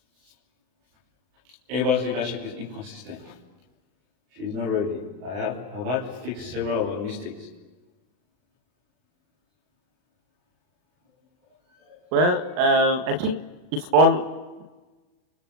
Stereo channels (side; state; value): left; late; 39 ms